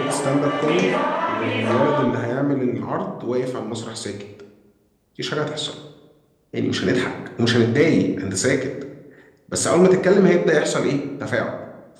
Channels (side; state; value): both; identical; correlation 1.00